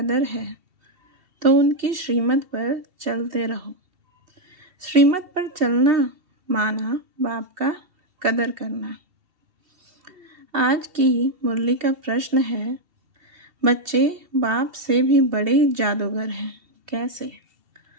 है तो उनकी श्रीमत पर चलते रहो। श्रीमत पर चलना माना बाप का कदर करना। आज की मुरली का प्रश्न है, बच्चे बाप से भी बड़े जादूगर हैं, कैसे?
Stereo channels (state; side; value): late; left; 2.7 ms